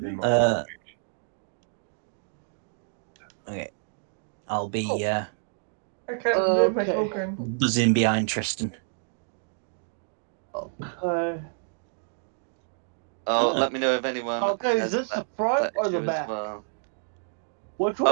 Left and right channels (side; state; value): left; silent; digital silence